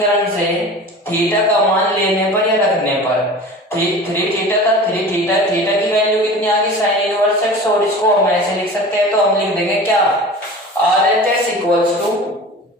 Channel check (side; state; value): both; normal; correlation 0.37